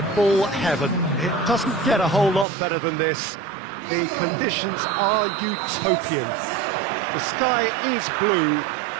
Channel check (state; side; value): drops out; left; at 2.5 s